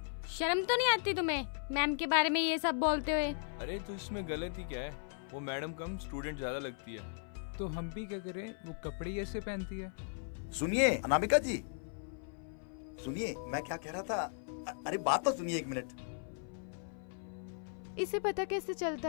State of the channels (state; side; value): silent; right; 53 dB below the other